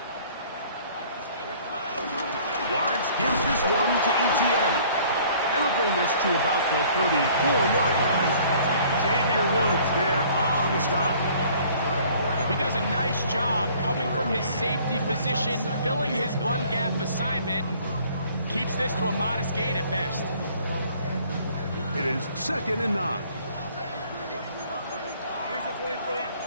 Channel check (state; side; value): inverted; both; correlation -0.55